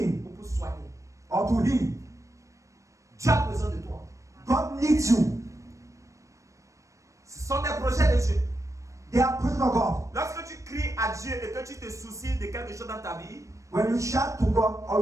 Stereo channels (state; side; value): late; left; 0.15 ms